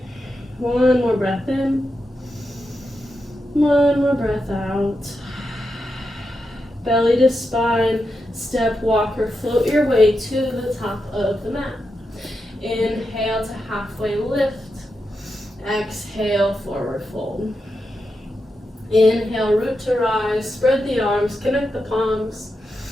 One more breath in. One more breath out. Belly to spine, step, walk, or float your way to the top of the mat. Inhale to halfway lift. Exhale, forward fold. Inhale, root to rise, spread the arms, connect the palms.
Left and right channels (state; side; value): normal; both; correlation 0.87